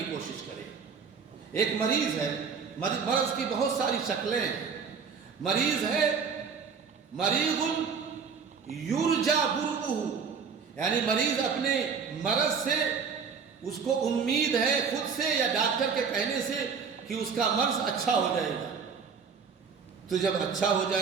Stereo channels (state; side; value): quieter; left; 6.0 dB